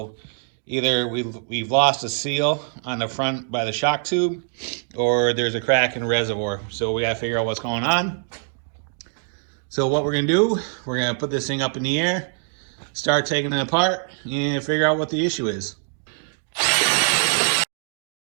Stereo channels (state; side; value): silent; left; digital silence